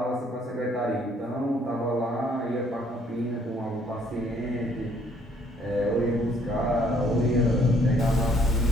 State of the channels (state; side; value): normal; both; correlation 0.64